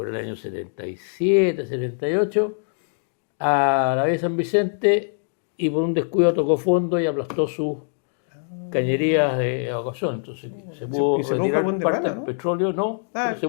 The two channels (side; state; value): right; silent; digital silence